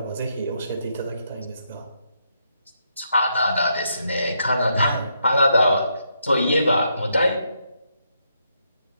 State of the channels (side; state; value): both; inverted; correlation -0.78